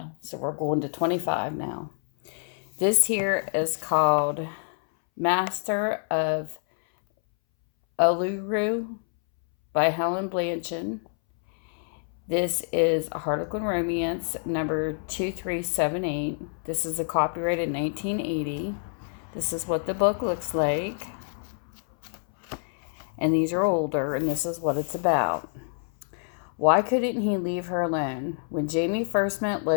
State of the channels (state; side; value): silent; right; 60 dB below the other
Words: So we're going to 25 now. This here is called Master of Uluru by Helen Bianchin. This is a Harlequin Romance number 2378. This is a copyrighted 1980. This is what the book looks like. And these are older, and this is what it's about. Why couldn't he leave her alone? When Jamie first met